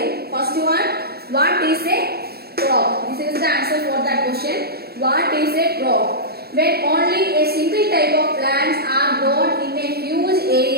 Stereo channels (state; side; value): late; left; 0.46 ms